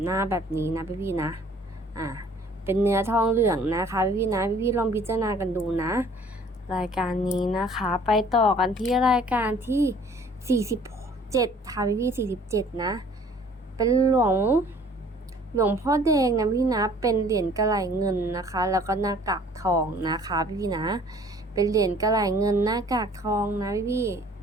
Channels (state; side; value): normal; both; correlation 0.54